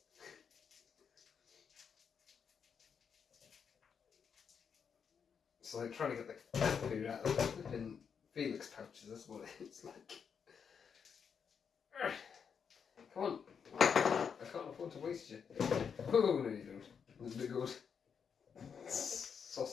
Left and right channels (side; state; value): right; quieter; 6.8 dB